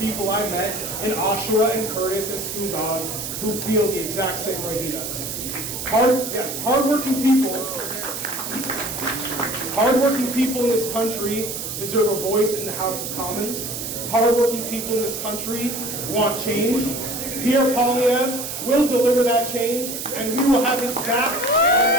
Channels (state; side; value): noise; right; hiss, 6 dB below the sound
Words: I met in Oshawa and Curtis and Scugog who feel the exact same way he does. Hardworking people in this country deserve a voice in the House of Commons. Hardworking people in this country want change. Pierre Poilievre will deliver that change, and we will have his back.